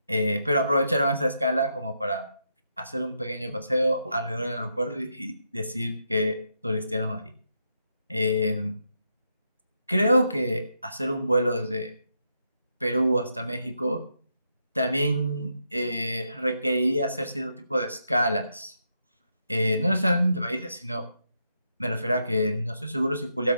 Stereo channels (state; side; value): inverted; both; correlation -0.82